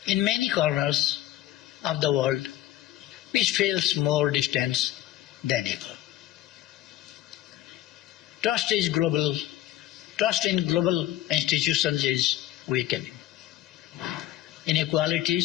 In many corners of the world, peace feels more distant than ever. Trust in global institutions is weakening.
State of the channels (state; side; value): quieter; right; 14.2 dB